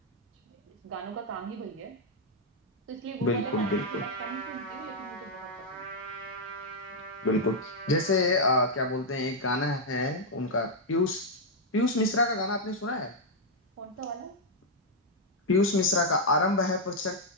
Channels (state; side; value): normal; both; correlation -0.03